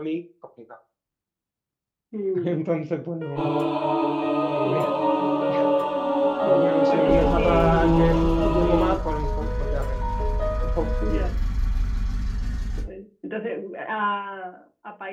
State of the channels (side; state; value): both; identical; correlation 1.00